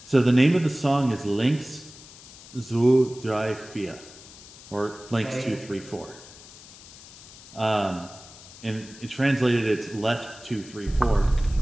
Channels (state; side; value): noise; left; hiss, 19 dB below the sound